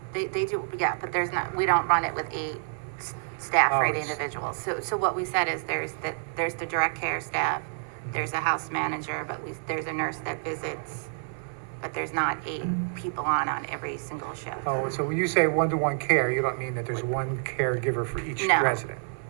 They do, yeah, but there's not, we don't run it with 8 staff Oh, for 8 it's- individuals. So what we said is there's the direct care staff, there's a house manager, but there's a nurse that visits, but there's not 8 people on every single shift. Oh, so when you say one-to-one care, you don't mean that there's one caregiver for each No. resident?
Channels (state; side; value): silent; left; 58 dB below the other